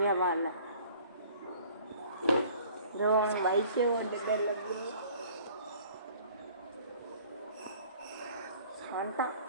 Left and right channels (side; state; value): both; inverted; correlation -0.52